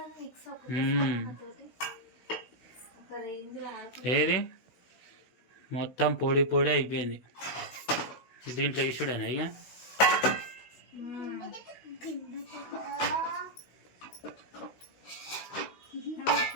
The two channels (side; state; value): right; late; 16 ms